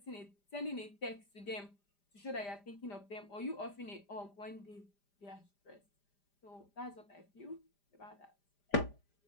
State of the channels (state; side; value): late; right; 5.0 ms